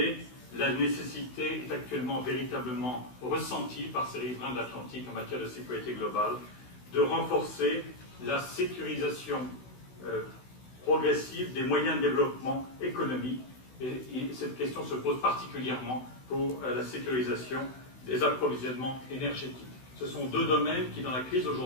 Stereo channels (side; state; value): right; late; 16 ms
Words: la nécessité est actuellement véritablement ressentie par ces riverains de l'Atlantique en matière de sécurité globale de renforcer la sécurisation progressive des moyens de développement économique. Et cette question se pose particulièrement pour la sécurisation des approvisionnements énergétiques. Ce sont deux domaines qui, dans la crise